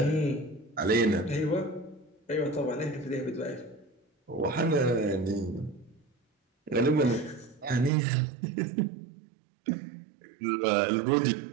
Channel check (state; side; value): drops out; left; at 7.9 s